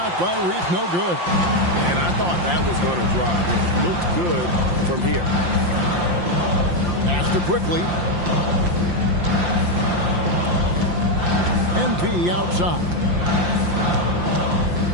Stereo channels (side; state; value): left; late; 5.7 ms